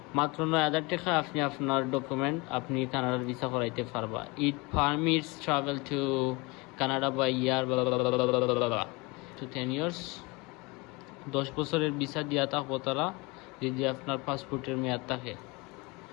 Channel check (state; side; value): quieter; right; 26.0 dB